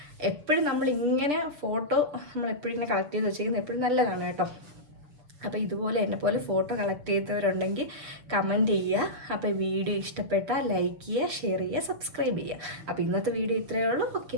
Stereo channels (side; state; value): left; late; 6.8 ms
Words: എപ്പോഴും നമ്മളിങ്ങനെ ഫോട്ടോ നമ്മളെപ്പോഴും ഇങ്ങനെ കളക്ട് ചെയ്ത് വെച്ചിരിക്കുന്നത് എപ്പോഴും നല്ലതാണ് കേട്ടോ. അപ്പോൾ ഇതുപോലെ എന്നെപ്പോലെ ഫോട്ടോ കളക്ട് ചെയ്തവരുണ്ടെങ്കിൽ കമൻറ്റ് ചെയ്യുക. അപ്പോൾ വീഡിയോ ഇഷ്ടപ്പെട്ടാൽ ലൈക്ക് ചെയ്യുക, ഷെയർ ചെയ്യുക, സബ്സ്ക്രൈബ് ചെയ്യുക. അപ്പോൾ ഇന്നത്തെ വീഡിയോ ഇത്രയേ ഉള്ളൂ.